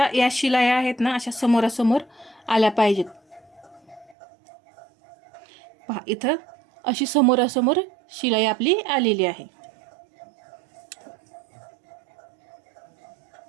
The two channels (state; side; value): drops out; left; at 4.2 s